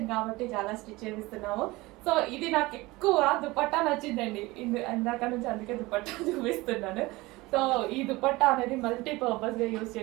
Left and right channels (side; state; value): left; quieter; 21.3 dB